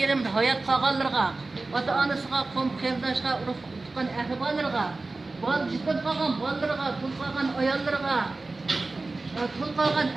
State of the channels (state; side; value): quieter; left; 3.4 dB